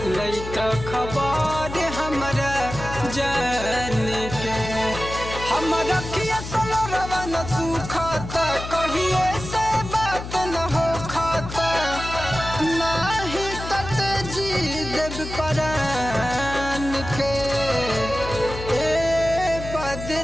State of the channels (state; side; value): noise; left; hum, 9 dB below the sound